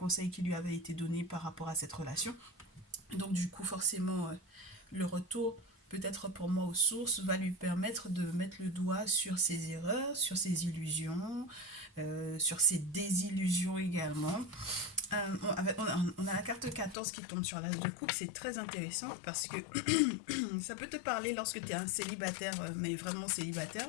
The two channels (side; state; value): right; drops out; at 16.9 s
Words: qui lui avaient été donnés par rapport à cette relation. Donc du coup, forcément, le retour, peut-être pour moi aux sources, va lui permettre de mettre le doigt sur ses erreurs, sur ses illusions, sur ses désillusions également. On a la carte 14 qui tombe sur l'as de coupe, c'est très intéressant parce que ça peut te parler lorsque tu es un célibataire, mais vraiment célibataire,